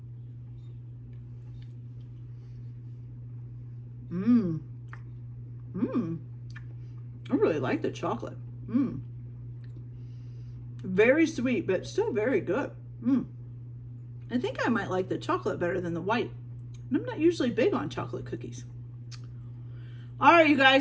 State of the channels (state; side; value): identical; both; correlation 1.00